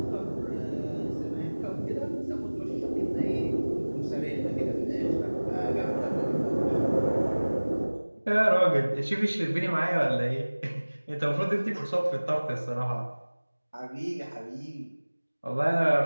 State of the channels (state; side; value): inverted; both; correlation -1.00